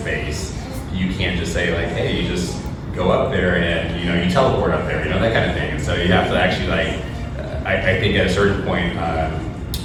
you can't just say like, hey, you just go up there and you teleport up there, that kind of thing. And so you have to actually like. I think at a certain point,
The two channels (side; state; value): both; identical; correlation 1.00